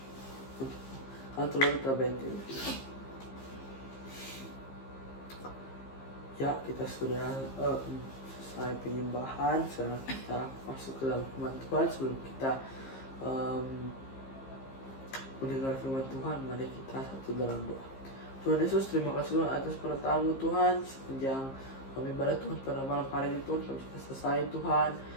Atau kita benci. Ya, kita sudah selesai penyembahan. Sekarang kita masuk ke dalam firman Tuhan. Sebelum kita mendengar firman Tuhan, mari kita satu dalam doa. Tuhan Yesus, terima kasih Tuhan atas pertamu Tuhan sepanjang kami ibadah Tuhan pada malam hari ini Tuhan. Kami sudah selesai Tuhan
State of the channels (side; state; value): right; late; 15 ms